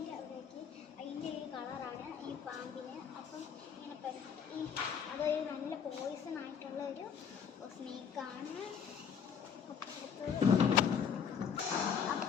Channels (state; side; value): quieter; right; 7.3 dB